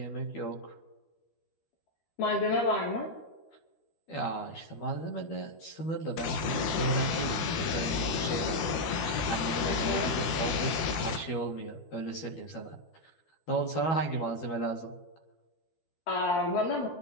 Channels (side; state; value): right; late; 12 ms